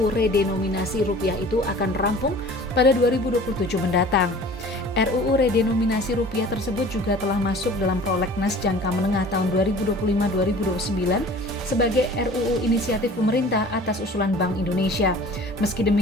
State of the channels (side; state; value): both; normal; correlation 0.45